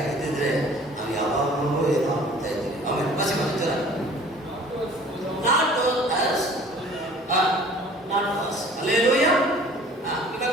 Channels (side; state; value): both; normal; correlation 0.50